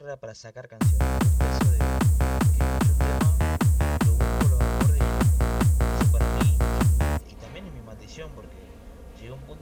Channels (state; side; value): identical; both; correlation 1.00